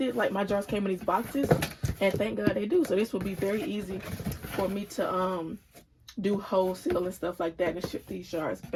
like my jars came in these boxes, and thank God they do. So this would be very easy for me to do wholesale and stuff like that and ship these jars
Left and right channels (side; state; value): both; identical; correlation 1.00